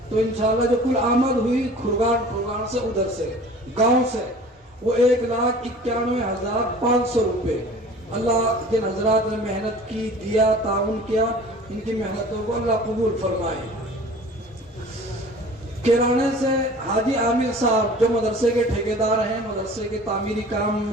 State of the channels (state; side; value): normal; both; correlation 0.45